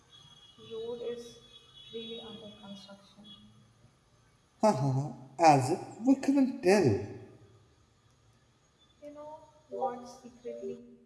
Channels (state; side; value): identical; both; correlation 1.00